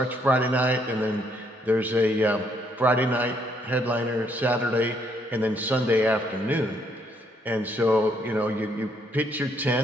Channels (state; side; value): normal; both; correlation 0.70